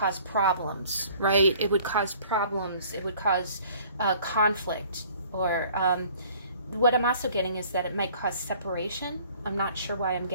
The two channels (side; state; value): both; inverted; correlation -0.54